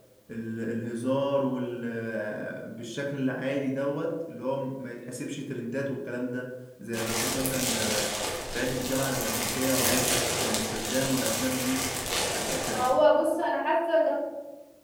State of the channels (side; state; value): both; identical; correlation 1.00